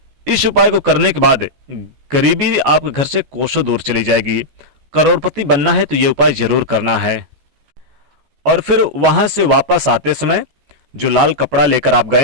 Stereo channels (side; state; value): left; late; 14 ms